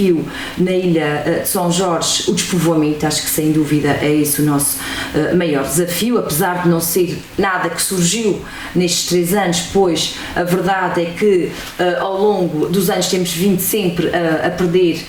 na Ilha de São Jorge, o despovoamento, acho que sem dúvida é esse o nosso maior desafio, apesar de não ser nada que surgiu nestes 3 anos, pois a verdade é que ao longo dos anos temos vindo sempre a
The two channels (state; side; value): identical; both; correlation 1.00